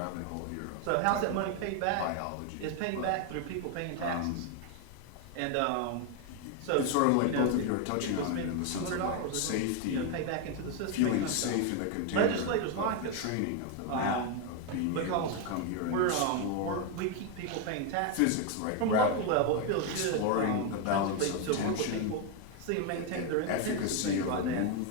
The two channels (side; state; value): both; different; correlation 0.01